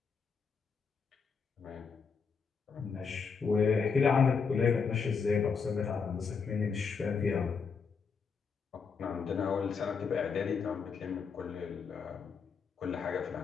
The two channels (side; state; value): right; quieter; 5.7 dB